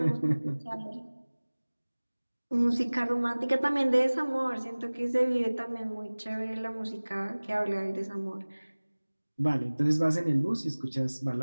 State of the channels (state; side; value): inverted; both; correlation -1.00